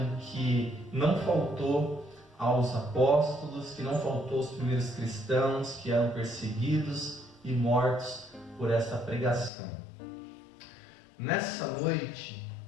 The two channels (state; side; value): drops out; right; at 9.5 s